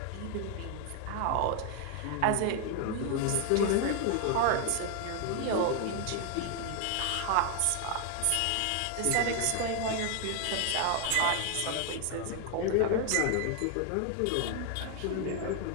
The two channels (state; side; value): different; both; correlation 0.01